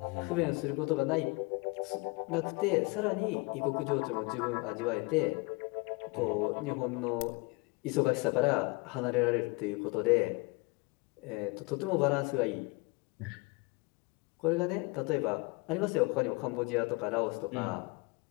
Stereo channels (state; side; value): quieter; right; 26.8 dB